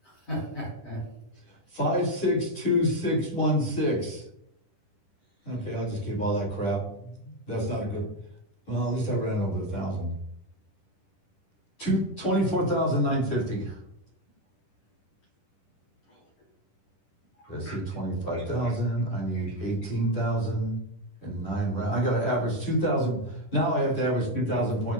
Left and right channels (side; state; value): right; late; 10 ms